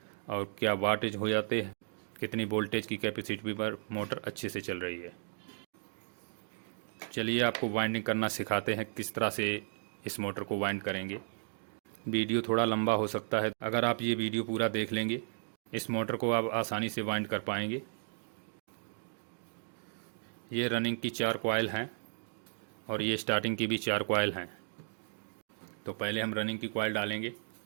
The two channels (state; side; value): silent; left; digital silence